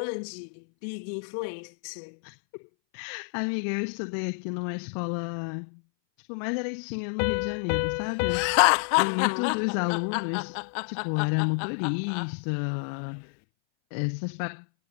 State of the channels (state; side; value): silent; right; 59 dB below the other